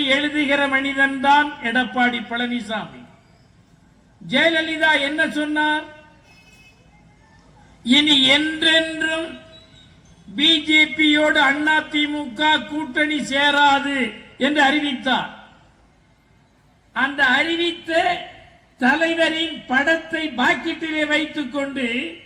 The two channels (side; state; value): both; identical; correlation 1.00